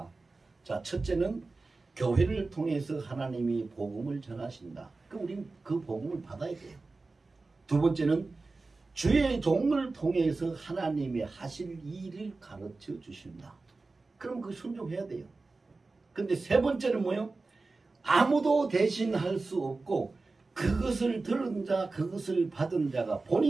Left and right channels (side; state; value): left; quieter; 3.6 dB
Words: 자, 첫째는 교회를 통해서 하나님이 복음을 전하신다. 그럼 우리는 그 복음을 받아야 돼요. 두 번째는 주의 종을 통해서 하나님의 하실 일을 가르쳐 주신다. 그럼 그 순종해야 돼요. 근데 세 번째는 뭐예요? 아무도 대신할 수 없고 그것을 들은 자, 그것을 받은 자가